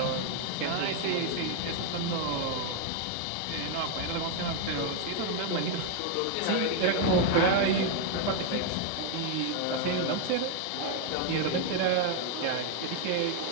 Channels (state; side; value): different; both; correlation 0.00